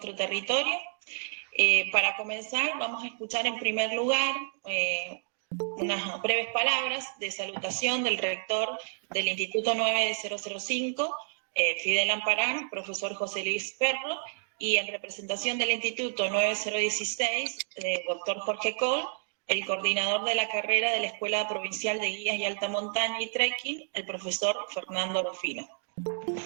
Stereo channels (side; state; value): left; silent; digital silence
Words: territorio. Para comenzar, vamos a escuchar en primer lugar unas breves palabras de salutación del rector del Instituto 9005, Fidel Amparán, profesor José Luis Perro, y en representación del Instituto 9016, doctor Jorge Coll, el coordinador de la carrera de la Escuela Provincial de Guías y Alta Montaña y Trekking, el profesor Fernando Rufino.